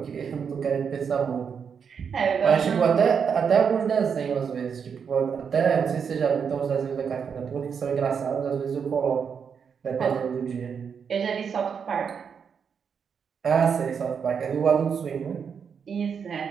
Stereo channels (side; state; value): left; quieter; 6.7 dB